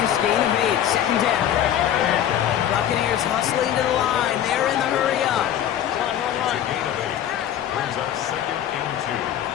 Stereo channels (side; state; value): right; quieter; 10.6 dB